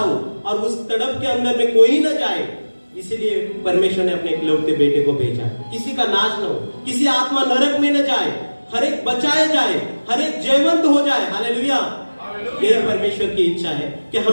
और उस तड़प के अंदर में कोई न जाए, इसलिए परमेश्वर ने अपने इकलौते बेटे को भेजा। किसी का नाश न हो, किसी आत्मा नरक में न जाए, हर एक बचाया जाए, हर एक जयवंत हो जाए। हालेलुया। यही परमेश्वर की इच्छा है कि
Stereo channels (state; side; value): inverted; both; correlation -1.00